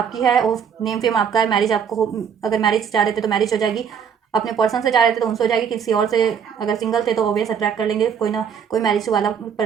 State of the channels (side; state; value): left; quieter; 7.4 dB